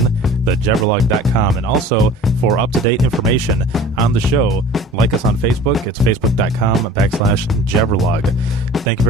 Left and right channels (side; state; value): both; normal; correlation 0.44